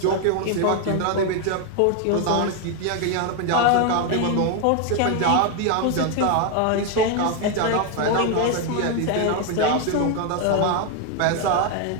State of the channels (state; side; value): different; both; correlation 0.01